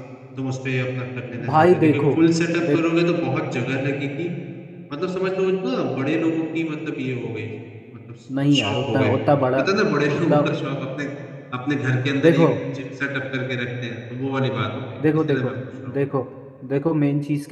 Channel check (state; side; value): identical; both; correlation 1.00